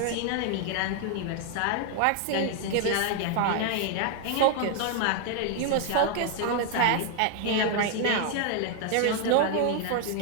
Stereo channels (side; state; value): both; different; correlation 0.00